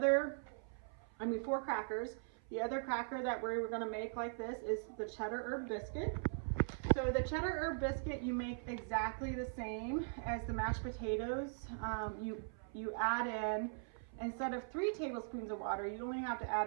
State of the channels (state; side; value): silent; left; 51 dB below the other